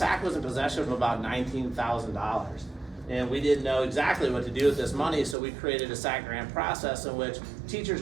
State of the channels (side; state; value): left; drops out; at 5.4 s